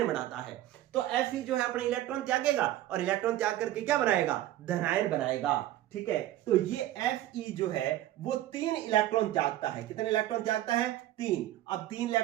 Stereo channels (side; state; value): left; quieter; 14.1 dB